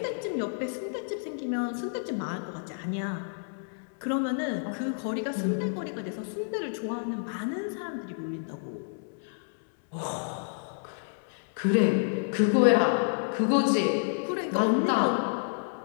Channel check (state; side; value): silent; right; digital silence